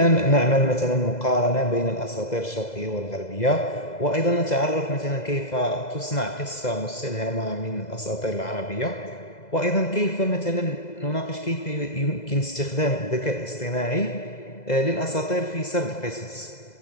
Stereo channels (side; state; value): right; late; 2.0 ms